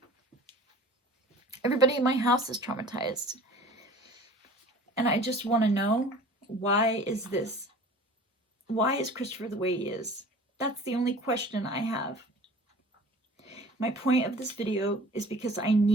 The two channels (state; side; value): normal; both; correlation 0.45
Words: Everybody in my house is traumatized. And I just want to know, why is this? Why is Christopher the way he is? That's the only question I have. My point of this video is because I